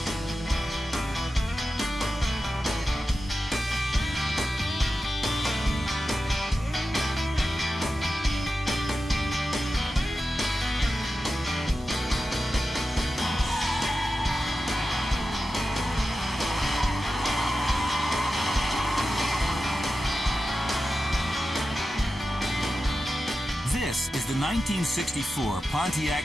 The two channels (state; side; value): normal; both; correlation 0.92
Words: This is the 1964 Pontiac